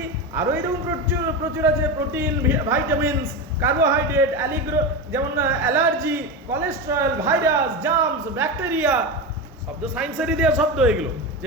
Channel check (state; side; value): normal; both; correlation 0.19